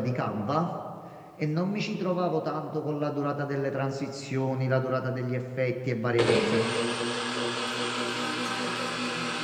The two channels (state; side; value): identical; both; correlation 1.00